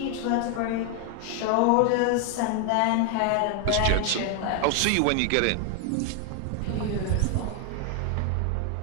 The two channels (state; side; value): different; both; correlation 0.01